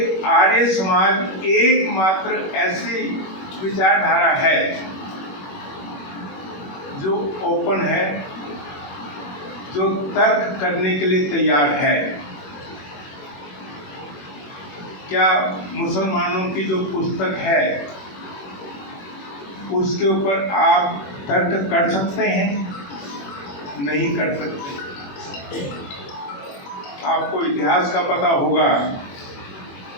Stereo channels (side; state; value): right; late; 21 ms